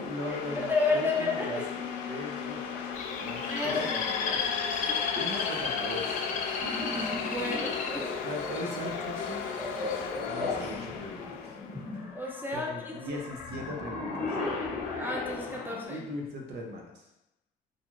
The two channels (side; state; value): right; quieter; 3.8 dB